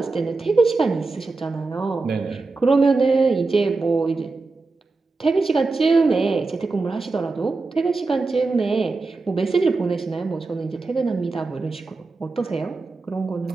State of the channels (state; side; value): quieter; left; 3.8 dB